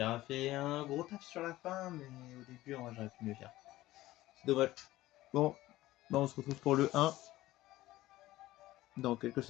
a fait un gros taf sur la fin, mais au début, moi j'aurais pu mieux faire. C'est dommage. Bon, bah on se retrouve pour le 1 dans quelques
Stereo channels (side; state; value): right; quieter; 16.6 dB